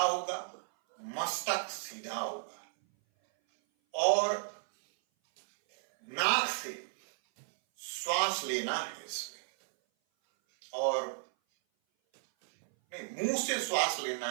मस्तक सीधा होगा और नाक से श्वास लेना है इसमें, और नहीं, मुंह से श्वास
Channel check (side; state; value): left; silent; 55 dB below the other